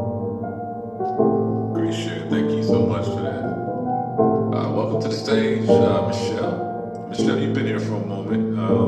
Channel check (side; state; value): both; identical; correlation 1.00